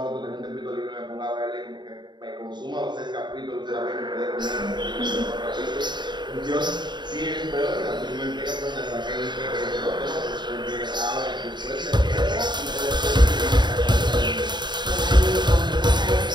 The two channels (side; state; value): left; late; 0.22 ms